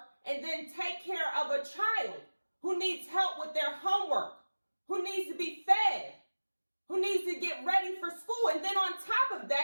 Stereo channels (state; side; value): inverted; both; correlation -1.00